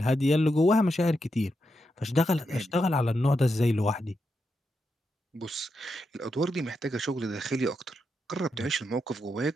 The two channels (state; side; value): normal; both; correlation 0.85